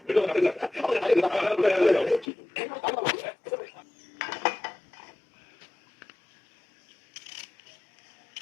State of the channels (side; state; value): right; drops out; at 2.2 s